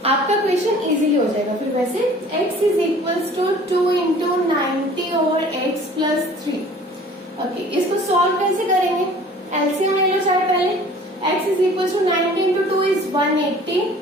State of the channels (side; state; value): both; normal; correlation 0.49